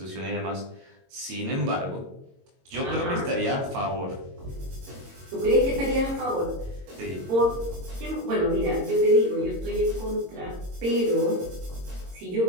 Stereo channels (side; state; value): left; late; 22 ms